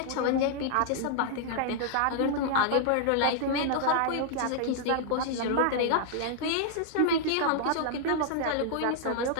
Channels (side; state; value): both; different; correlation -0.01